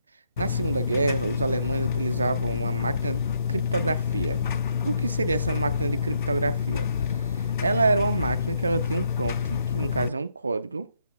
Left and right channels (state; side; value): inverted; both; correlation -0.74